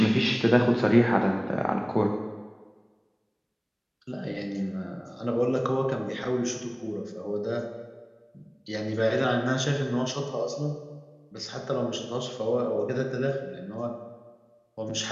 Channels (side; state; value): both; identical; correlation 1.00